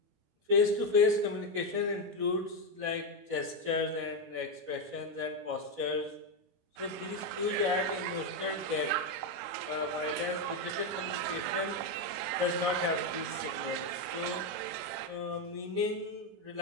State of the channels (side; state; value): left; late; 17 ms